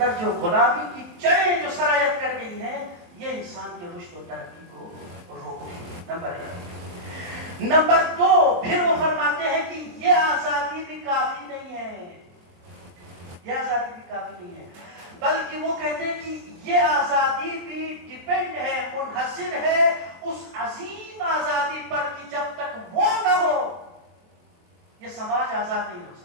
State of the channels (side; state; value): left; late; 23 ms